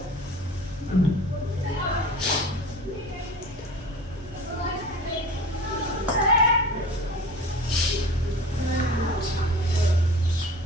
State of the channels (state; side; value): normal; both; correlation 0.38